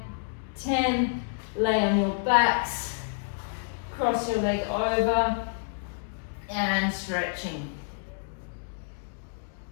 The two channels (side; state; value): right; silent; digital silence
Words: 10. Lay on your backs. Cross your leg over and stretching.